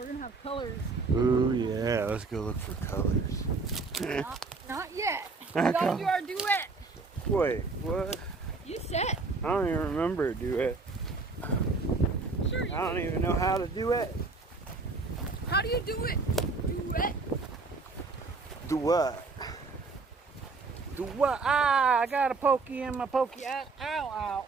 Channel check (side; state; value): left; quieter; 4.0 dB